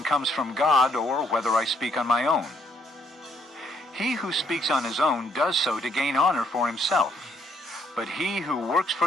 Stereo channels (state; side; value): normal; both; correlation 0.69